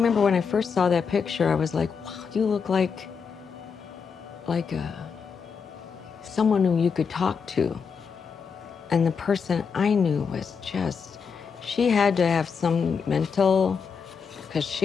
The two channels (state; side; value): quieter; right; 6.0 dB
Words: when I first saw that picture, I was like, wow, you look like someone who you could talk to. And the person I knew was just, she had to have some mental, because